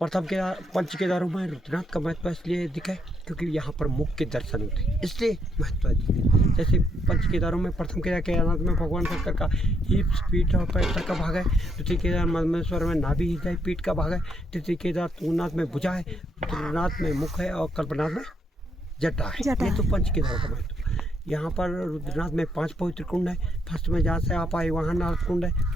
केदार पंच केदारों में रुद्रनाथ का महत्व इसलिए दिखा है क्योंकि यहाँ पर मुख्य दर्शन होते हैं, इसलिए महत्व है। जैसे पंच केदारों में प्रथम केदार केदारनाथ में भगवान शंकर का हिप्स पीठ और पैर का भाग है, द्वितीय केदार मधमेश्वर में नाभि हृदय पीठ का भाग है, तृतीय केदार तुंगनाथ में भुजा है, रुद्रनाथ में मुख है और कल्पनाथ में जटा है। ये तो पंच केदारों का महत्व। यहाँ पर रुद्रनाथ में 5 पवित्र कुंड है। फर्स्ट में जहाँ से आप आए वहाँ नारद कुंड है,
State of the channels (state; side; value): normal; both; correlation 0.75